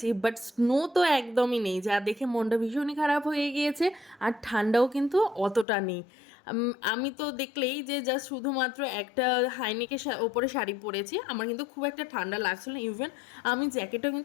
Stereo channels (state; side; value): drops out; right; at 5.7 s